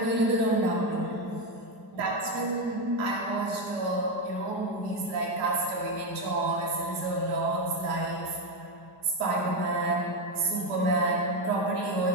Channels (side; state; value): left; late; 4.9 ms